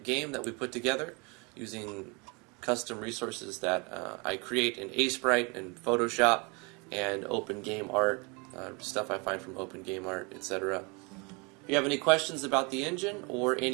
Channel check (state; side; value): quieter; left; 30.3 dB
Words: game that we put together using custom resources that I create in Sprite and Photoshop and Open Game Art, stuff I find from Open Game Art, etc. If you have any questions about the engine or